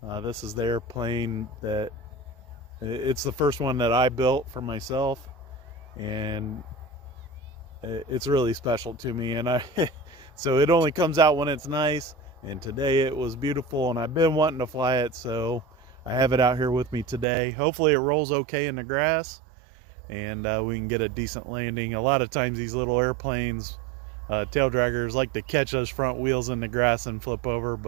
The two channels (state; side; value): drops out; left; at 17.2 s